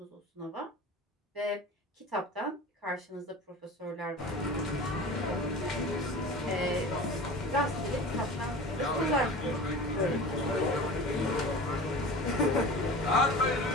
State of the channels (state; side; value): normal; both; correlation 0.36